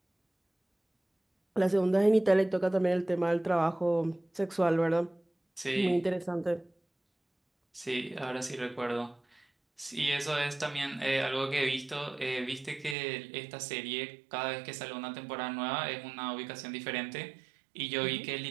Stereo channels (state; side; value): drops out; left; at 13.0 s